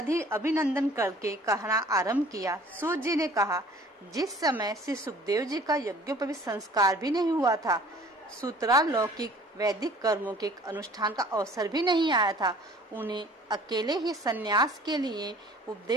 अभिनंदन करके कहना आरंभ किया। सूत जी ने कहा, जिस समय श्री सुखदेव जी का यज्ञोपवीत संस्कार भी नहीं हुआ था, सूत्रालौकिक वैदिक कर्मों के अनुष्ठान का अवसर भी नहीं आया था, उन्हें अकेले ही संन्यास के लिए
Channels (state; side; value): normal; both; correlation 0.50